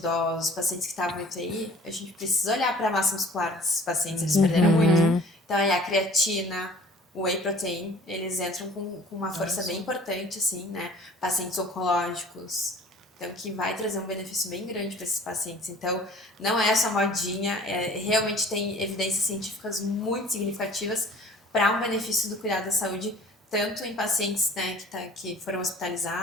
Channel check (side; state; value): both; normal; correlation 0.49